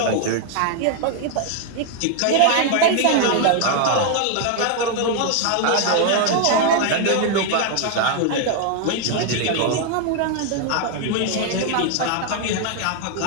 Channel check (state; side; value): different; both; correlation 0.00